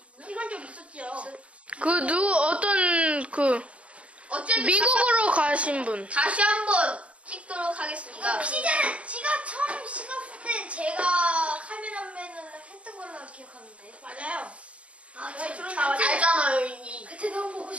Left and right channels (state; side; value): late; left; 0.062 ms